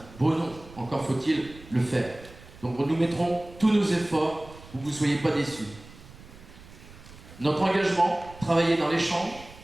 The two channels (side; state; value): right; noise; rumble, 19 dB below the sound